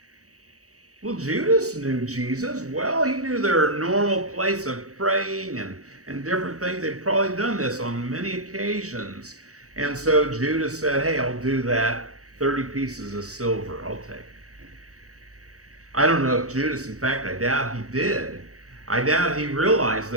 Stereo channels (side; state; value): left; late; 0.65 ms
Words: Well, Judas knew Jesus well. He knew their normal place of praying and different things. They'd probably done this on many occasions. And so Judas said, hey, I'll do that 30 pieces of silver, I'll take. I don't know if Judas, in fact, I doubt he did. I doubt he realized